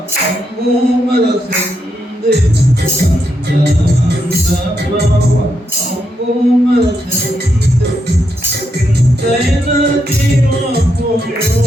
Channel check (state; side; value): normal; both; correlation 0.81